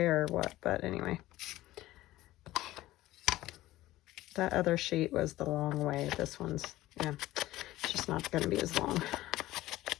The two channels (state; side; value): quieter; right; 16.3 dB